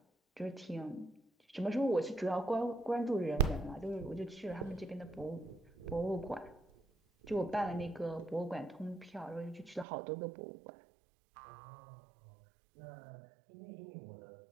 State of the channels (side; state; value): left; drops out; at 9.9 s